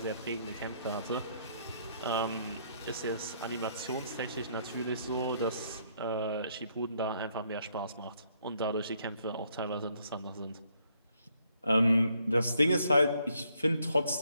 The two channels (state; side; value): inverted; both; correlation -0.70